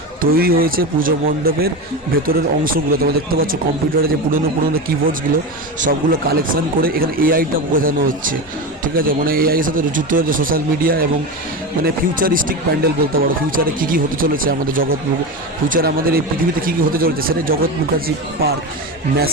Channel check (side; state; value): both; normal; correlation 0.21